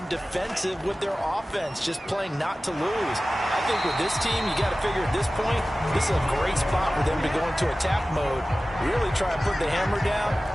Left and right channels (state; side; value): normal; both; correlation 0.96